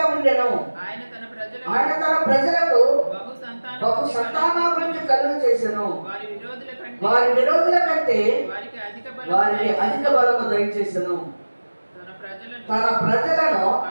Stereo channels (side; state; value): both; inverted; correlation -1.00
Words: ఉండెను. ఆయన తన ప్రజలకు బహు సంతానాభివృద్ధి కలుగు చేసెను. వారి విరోధుల కంటే వారికి అధిక బలము దయచేసెను. తన ప్రజలను